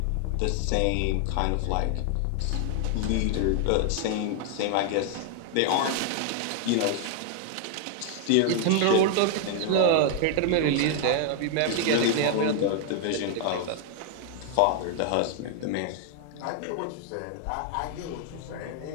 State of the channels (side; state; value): both; different; correlation 0.00